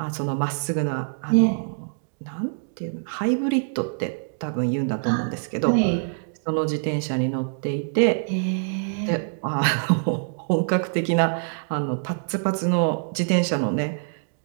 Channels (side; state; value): left; silent; digital silence